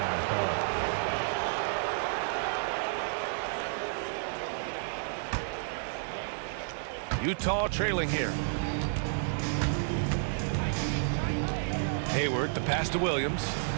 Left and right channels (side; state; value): left; silent; digital silence